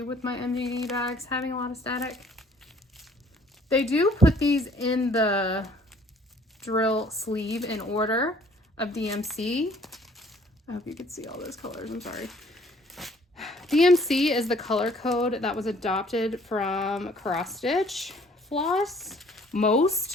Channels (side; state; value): both; normal; correlation 0.57